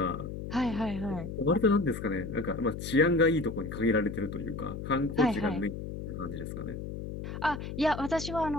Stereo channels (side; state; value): left; noise; hum, 7 dB below the sound